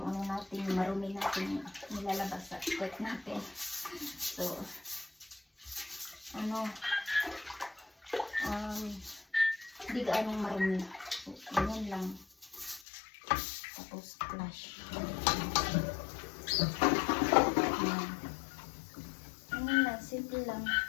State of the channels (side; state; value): right; drops out; at 12.8 s